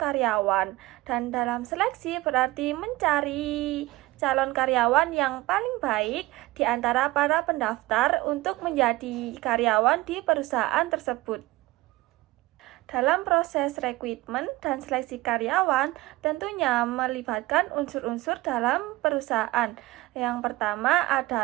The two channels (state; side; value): quieter; left; 19.3 dB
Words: dan dalam seleksi berarti mencari calon karyawan yang paling baik di antara para pendaftar untuk menjadi karyawan di perusahaan tersebut. Dalam proses rekrutmen dan seleksi karyawan tentunya melibatkan unsur-unsur dalam perusahaan. Yang pertama